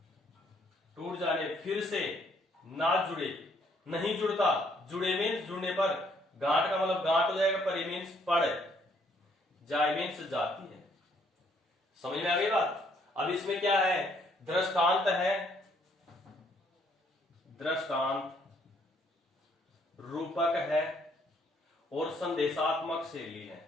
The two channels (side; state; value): both; normal; correlation 0.67